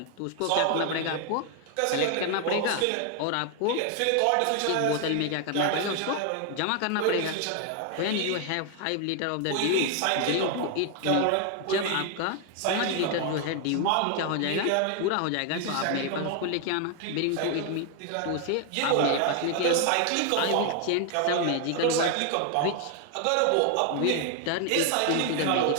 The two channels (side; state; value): both; different; correlation 0.00